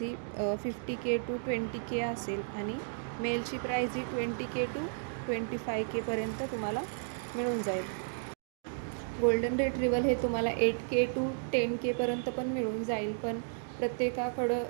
he 50K to 20K असेल आणि मेलची price he 20K to 25K पर्यंत तुम्हाला मिळून जाईल. गोल्डन रिट्रीव्हल हे तुम्हाला 8K to 10K पर्यंत पण मिळून जाईल, पण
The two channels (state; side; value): silent; left; digital silence